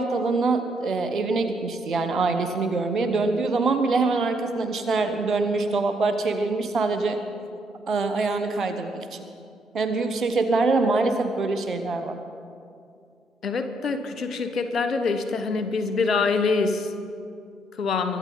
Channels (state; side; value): normal; both; correlation 0.73